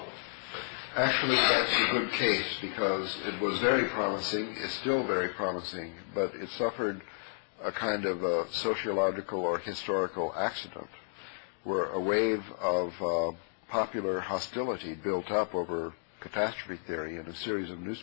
Actually, that's a good case because it was very promising, it's still very promising, but it suffered a kind of a sociological or historical accident where a wave of popular hostility built up over catastrophe theory in a series of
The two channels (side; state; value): right; silent; digital silence